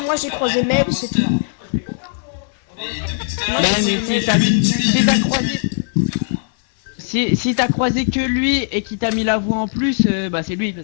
moi j'ai croisé Mel, c'est tout. Mais depuis tout à l'heure, mais si t'as croisé... Si t'as croisé que lui et qu'il t'a mis la voix en plus, bah c'est lui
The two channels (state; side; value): silent; right; digital silence